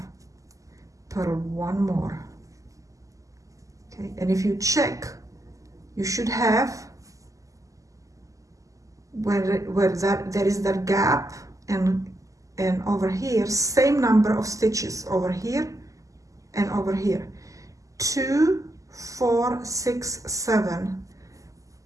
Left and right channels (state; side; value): late; left; 0.16 ms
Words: purl 1 more. Okay, and if you check, you should have where there is that gap, and over here same number of stitches over here and over here. 2, 4, 6, 7.